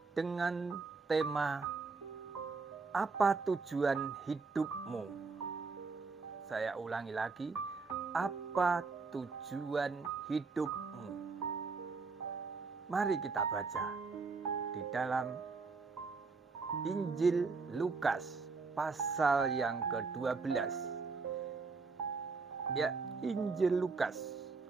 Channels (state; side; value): quieter; left; 4.5 dB